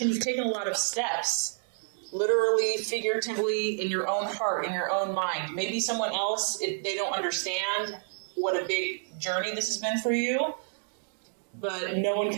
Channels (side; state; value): left; silent; digital silence